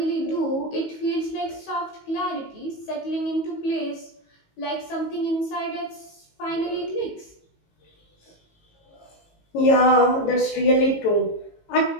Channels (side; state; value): right; late; 18 ms